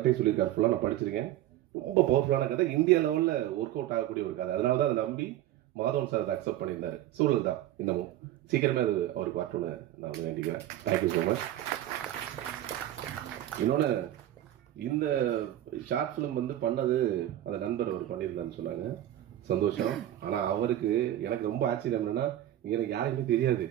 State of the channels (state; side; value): quieter; left; 13.3 dB